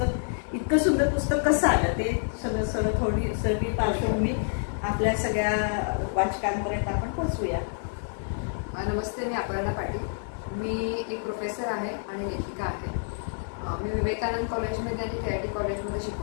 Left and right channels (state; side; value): silent; right; digital silence